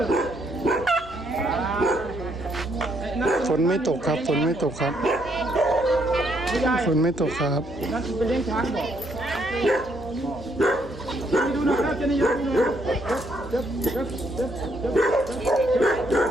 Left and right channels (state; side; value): noise; left; hum, 17 dB below the sound